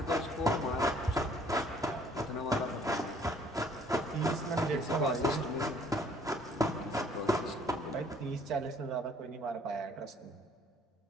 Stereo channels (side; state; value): both; normal; correlation 0.59